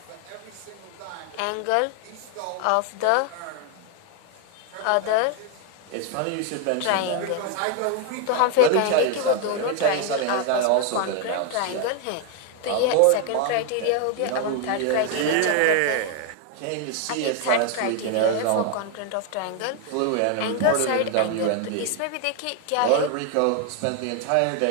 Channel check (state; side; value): different; both; correlation 0.01